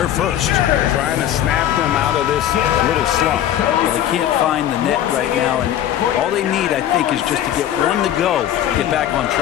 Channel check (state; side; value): quieter; right; 11.3 dB